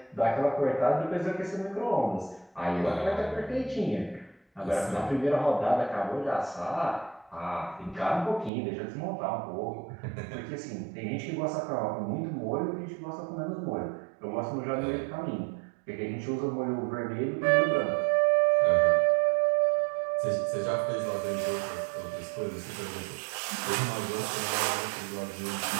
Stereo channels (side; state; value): left; drops out; at 8.5 s